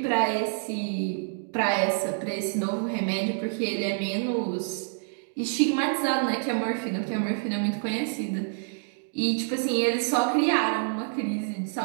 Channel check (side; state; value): left; silent; digital silence